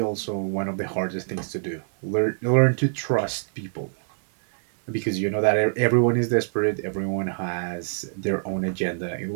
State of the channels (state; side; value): silent; left; digital silence